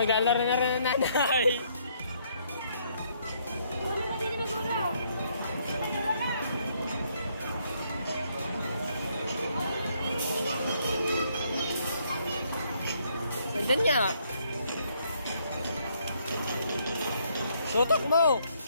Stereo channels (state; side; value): inverted; both; correlation -0.70